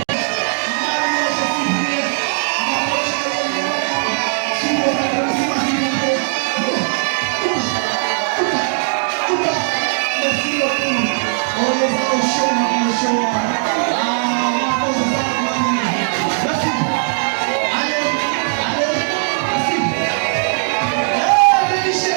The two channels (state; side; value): silent; left; digital silence